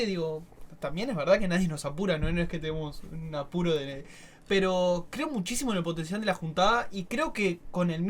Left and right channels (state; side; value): identical; both; correlation 1.00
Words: digo, también es verdad que nadie nos apura, no es que tenemos un apuro pero creo muchísimo en el potencial de la juntada y creo que con el